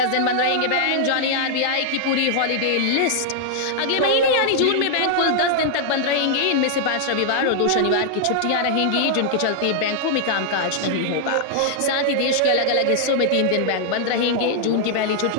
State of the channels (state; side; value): different; both; correlation -0.01